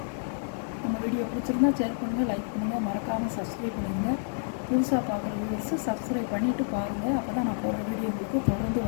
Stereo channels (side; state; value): right; silent; digital silence